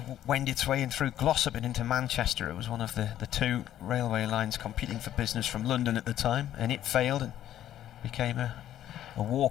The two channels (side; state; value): right; quieter; 11.8 dB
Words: wend its way in through Glossop and into Manchester. It was one of the 2 railway lines competing for business from London at the time, and it failed and became a